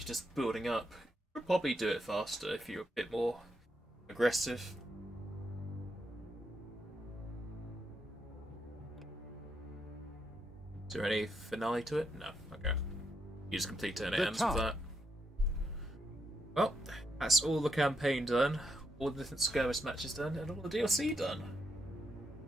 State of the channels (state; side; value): normal; both; correlation 0.79